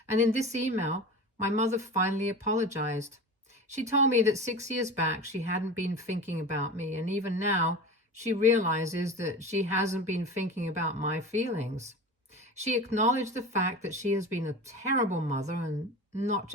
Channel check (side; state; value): both; normal; correlation 0.31